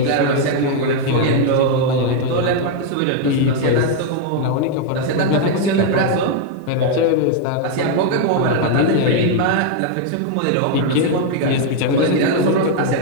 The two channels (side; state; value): both; different; correlation 0.00